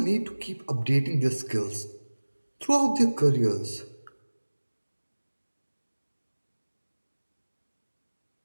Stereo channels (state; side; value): inverted; both; correlation -1.00